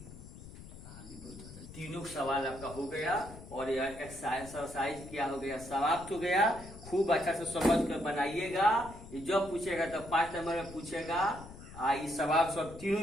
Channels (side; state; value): left; noise; rumble, 15 dB below the sound